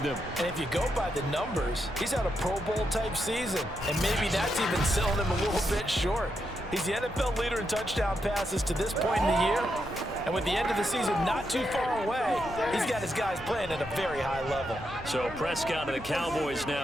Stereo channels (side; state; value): both; normal; correlation 0.83